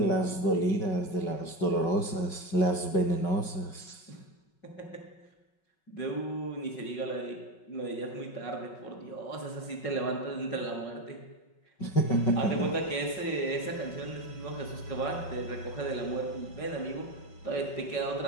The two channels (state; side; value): late; right; 5.4 ms